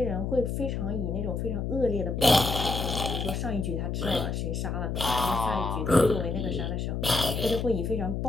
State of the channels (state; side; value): noise; left; hum, 2 dB below the sound